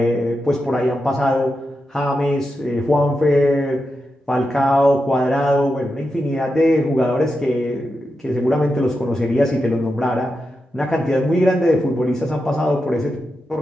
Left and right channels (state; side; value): normal; both; correlation 0.88